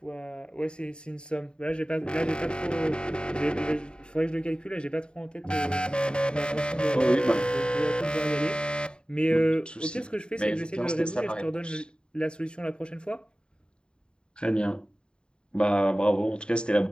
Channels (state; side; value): late; right; 0.051 ms